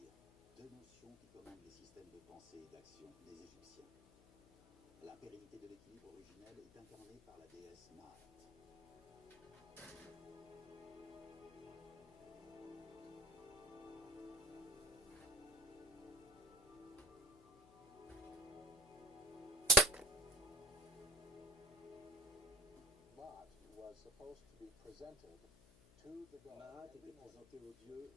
deux notions qui commandent les systèmes de pensée et d'action des Égyptiens. La pérennité de l'équilibre originel est incarnée par la déesse Maat. Maat était présenté aux dieux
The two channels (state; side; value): noise; left; hum, 23 dB below the sound